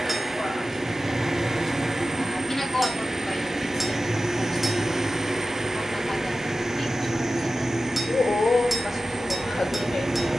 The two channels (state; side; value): normal; both; correlation 0.94